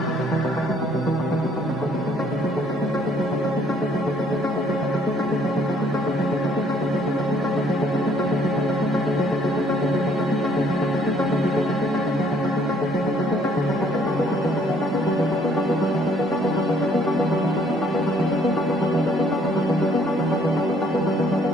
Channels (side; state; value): both; normal; correlation 0.63